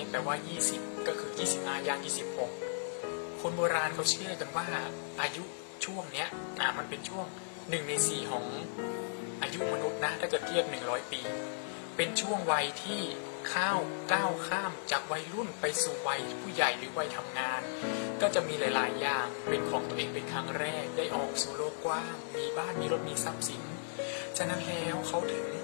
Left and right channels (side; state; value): right; silent; digital silence